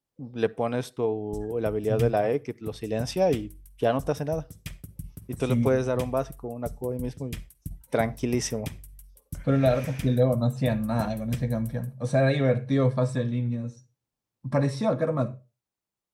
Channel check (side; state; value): both; identical; correlation 1.00